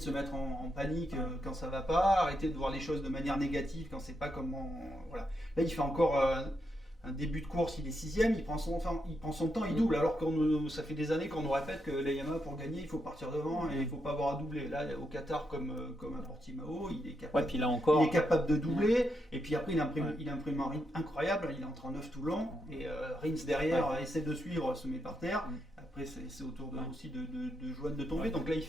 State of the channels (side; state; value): both; normal; correlation 0.82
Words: se mettre en panique quand ça va pas, arrêter de voir les choses de manière négative quand c'est pas comment. Voilà. Là, il fait encore un début de course, il est 6e, il prend son temps, il double, alors que ça fait des années qu'on nous répète que les Yamaha, pour gagner, il faut partir devant et il ne faut pas avoir à doubler. Là, au Qatar, comme à Portimao, il est capable, Ouais, puis là encore. il est capable de doubler, et puis après, il imprime un rythme incroyable, il est en 39 tout le long, et Rins derrière essaie de suivre, se met par terre, Après, c'est au tour aussi de Johan de tomber. Donc là, il